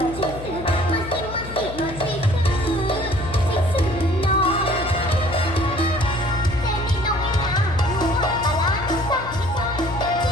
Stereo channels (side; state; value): left; noise; hum, 11 dB below the sound